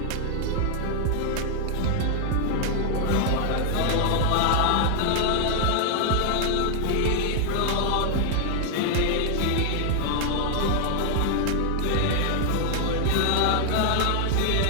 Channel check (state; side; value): different; both; correlation 0.00